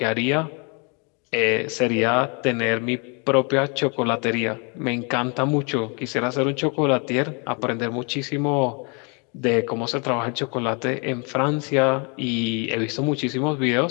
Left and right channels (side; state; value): right; quieter; 34.2 dB